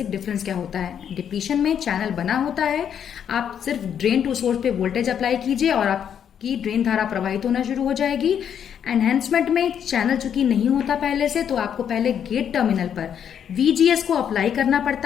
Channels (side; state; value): right; quieter; 8.6 dB